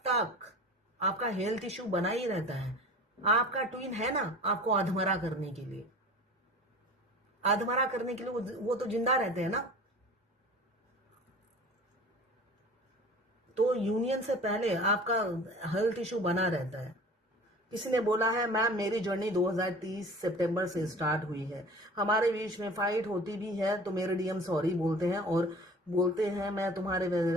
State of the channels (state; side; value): normal; both; correlation 0.41